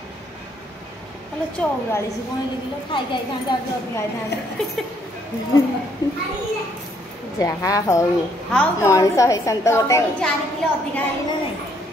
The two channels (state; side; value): normal; both; correlation 0.68